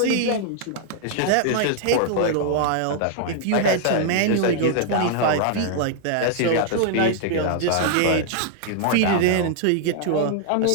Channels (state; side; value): different; both; correlation 0.00